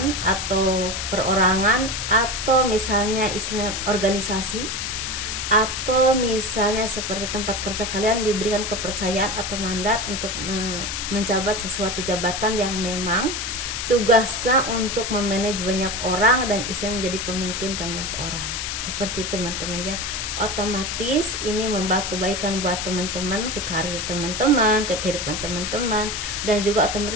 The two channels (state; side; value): noise; left; hiss, 3 dB below the sound